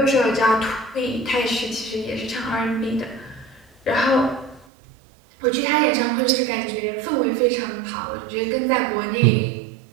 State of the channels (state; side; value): drops out; left; at 4.7 s